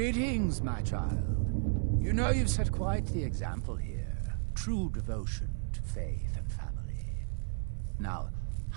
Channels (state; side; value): silent; left; 56 dB below the other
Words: my child. You know you've set quite the example here. True devotion to faith and family. Now,